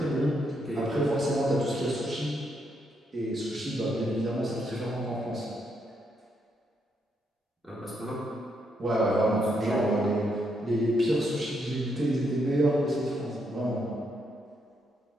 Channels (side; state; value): both; normal; correlation 0.77